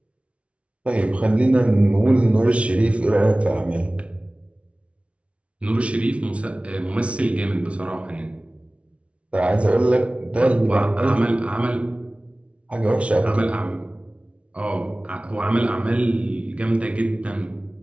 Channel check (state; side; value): late; left; 0.062 ms